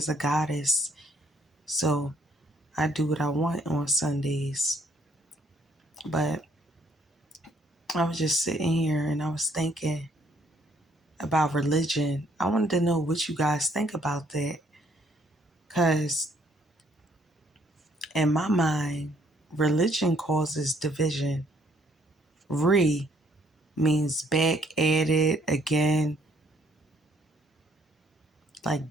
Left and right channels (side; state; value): both; normal; correlation 0.66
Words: a goddess. So I do what I want on Sundays. But I was just sitting here and I was thinking about religion. I wanted to know what you guys think about that. Cause in my mind, religion causes division. Means back at it again, like